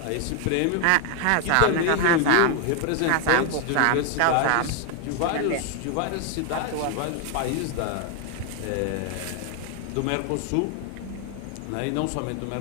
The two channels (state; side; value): different; both; correlation 0.00